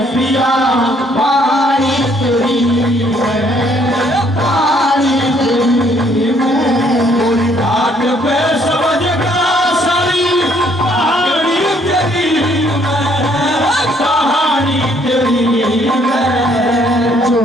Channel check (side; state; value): both; normal; correlation 0.65